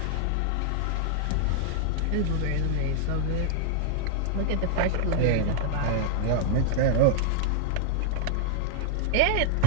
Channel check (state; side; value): different; both; correlation 0.00